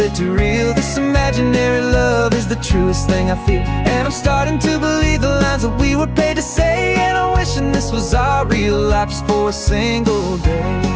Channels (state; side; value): identical; both; correlation 1.00